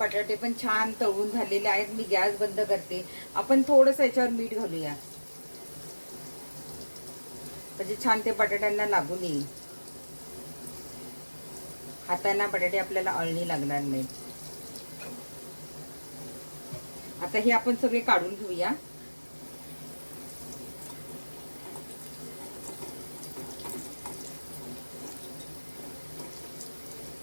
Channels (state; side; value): inverted; both; correlation -1.00